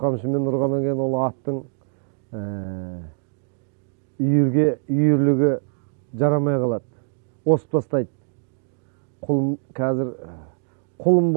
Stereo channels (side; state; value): left; silent; digital silence